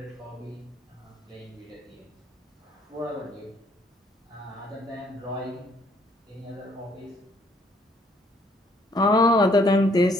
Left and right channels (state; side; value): normal; both; correlation 0.65